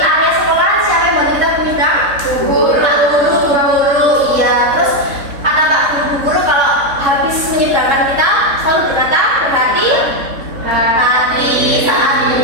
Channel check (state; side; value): late; left; 3.6 ms